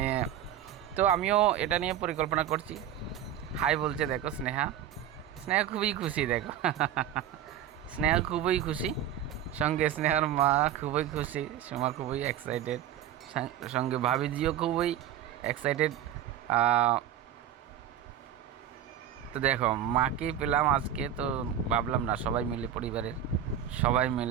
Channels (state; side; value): quieter; left; 10.3 dB